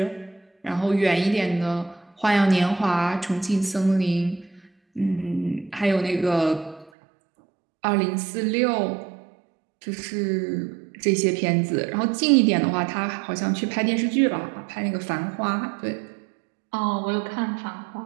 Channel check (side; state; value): left; drops out; at 6.9 s